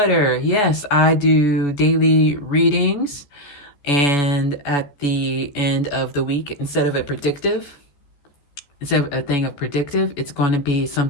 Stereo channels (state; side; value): late; right; 14 ms